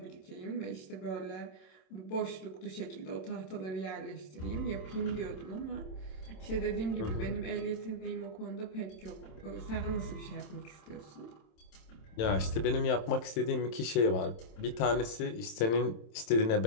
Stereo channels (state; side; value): late; right; 27 ms